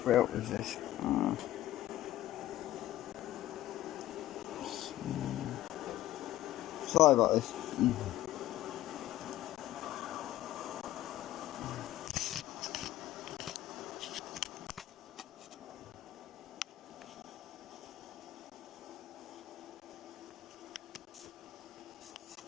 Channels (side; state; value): right; quieter; 14.4 dB